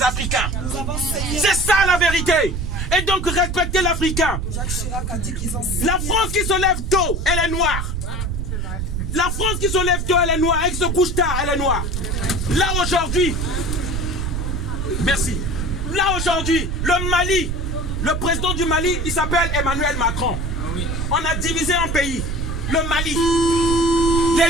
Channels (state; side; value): noise; right; rumble, 2 dB below the sound